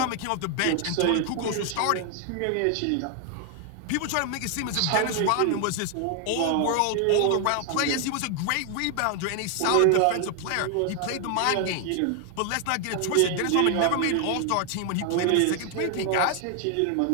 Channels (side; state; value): both; different; correlation 0.00